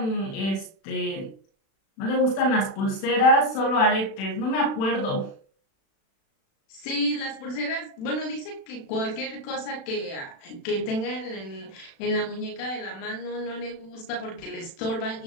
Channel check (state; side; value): late; right; 36 ms